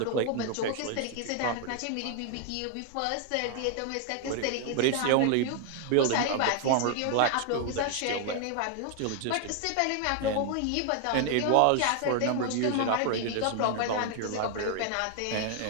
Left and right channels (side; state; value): both; different; correlation 0.00